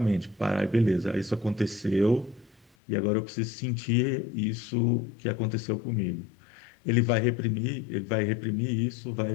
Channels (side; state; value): right; drops out; at 2.7 s